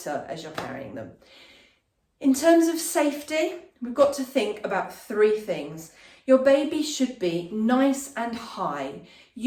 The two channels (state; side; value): identical; both; correlation 1.00